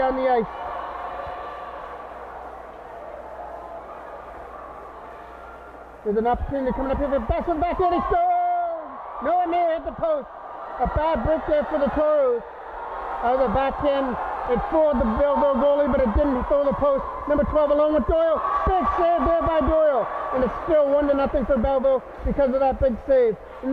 the ice. There's an opportunity coming up here for best one back in. He scores! No one there hit the post. A bad break there for the Toros. The backhand, it fooled the Belleville goalie, but it didn't fool the post. Number 12 along with Doyle. Big save there by Doyle. And it's still 1-0 for Belleville because of that big save.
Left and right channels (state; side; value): identical; both; correlation 1.00